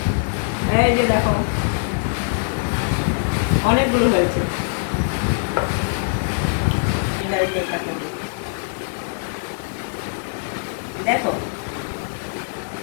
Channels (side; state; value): right; silent; digital silence